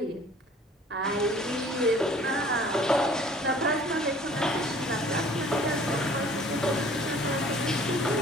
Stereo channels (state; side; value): normal; both; correlation 0.52